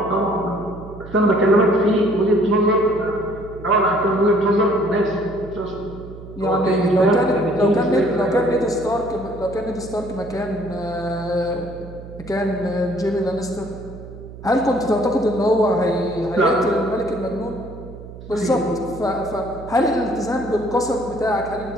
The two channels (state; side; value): noise; right; hum, 15 dB below the sound